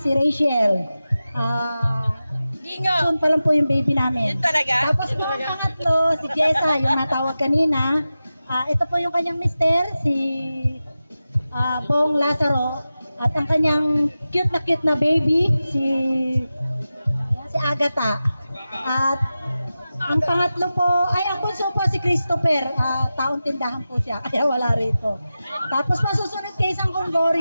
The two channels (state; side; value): inverted; both; correlation -0.94